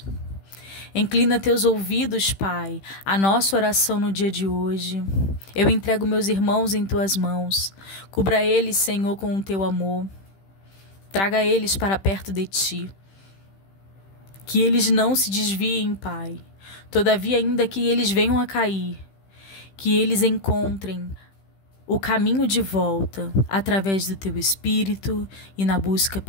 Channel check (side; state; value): right; late; 15 ms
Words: Inclina Teus ouvidos, Pai, à nossa oração no dia de hoje. Eu entrego meus irmãos em Tuas mãos. Cubra eles, Senhor, com o Teu amor. Traga eles para perto de Ti. Que eles não se desviem, Pai. Todavia, ainda que eles venham a cair, que eles encontrem o caminho de volta através do Teu Espírito e na busca